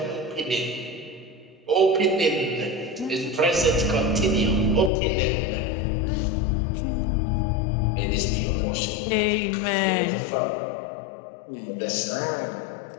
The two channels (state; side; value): drops out; right; at 4.9 s